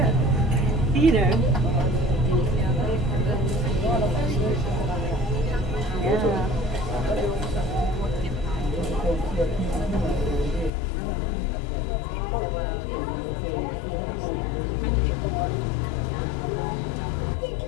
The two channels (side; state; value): right; drops out; at 10.7 s